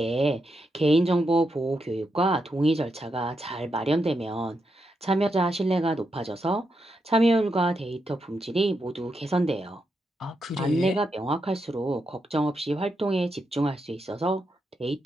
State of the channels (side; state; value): both; normal; correlation 0.84